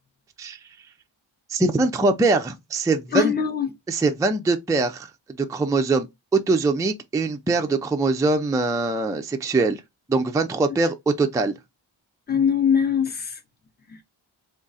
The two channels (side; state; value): both; normal; correlation 0.54